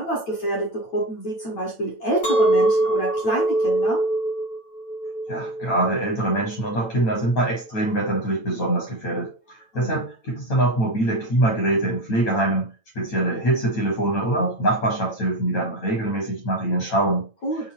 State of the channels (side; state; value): right; late; 9.0 ms